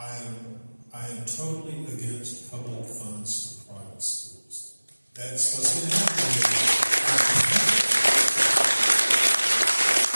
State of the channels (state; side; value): inverted; both; correlation -1.00